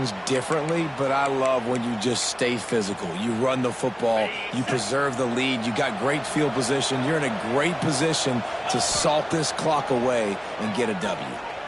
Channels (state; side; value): identical; both; correlation 1.00